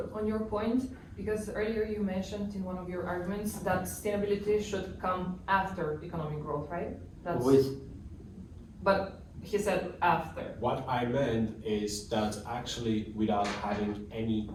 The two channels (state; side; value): identical; both; correlation 1.00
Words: on your point, because earlier you mentioned in one of your arguments that sustainability should come after economic growth, right? That's, With but he said after. What I meant is that actually without having any